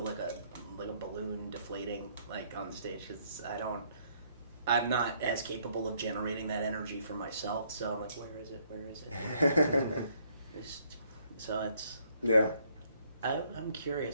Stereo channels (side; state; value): both; inverted; correlation -0.67